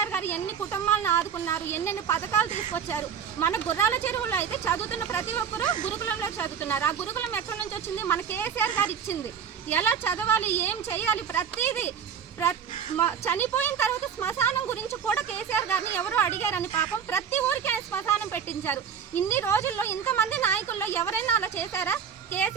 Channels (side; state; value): left; quieter; 7.5 dB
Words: గారు ఎన్ని కుటుంబాలను ఆదుకున్నారు, ఎన్నెన్ని పథకాలు తీసుకొచ్చారు. మన గుర్రాల చెరువులో అయితే చదువుతున్న ప్రతి ఒక్కరూ గురుకులంలో చదువుతున్నారు. ఆ గురుకులం ఎక్కడి నుంచి వచ్చింది? మన కేసీఆర్ గారు ఇచ్చింది. ఎలా చదవాలి, ఏం చేయాలి, ప్రతిదీ. చనిపోయిన తర్వాత శ్మశానం గురించి కూడా కేసీఆర్ గారిని ఎవరో అడిగారని పాపం ప్రతి ఊరికి ఆయన శ్మశానం పెట్టించారు. ఇన్ని రోజుల్లో ఇంతమంది నాయకుల్లో ఎవరైనా అలా చేశారా?